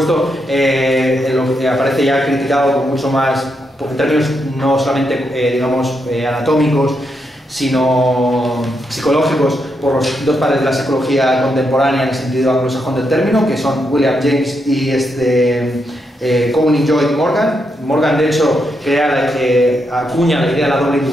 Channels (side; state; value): both; normal; correlation 0.81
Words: lo que aparece ya criticado con mucho más, en términos no solamente digamos anatómicos, sino psicológicos, por los dos padres de la psicología contemporánea en el sentido anglosajón del término, que son William James y Cohen y Lloyd Morgan. Morgan, de hecho, acuña la idea de la doble